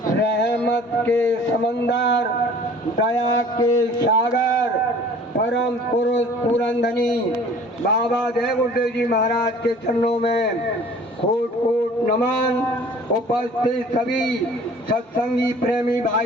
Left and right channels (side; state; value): both; normal; correlation 0.49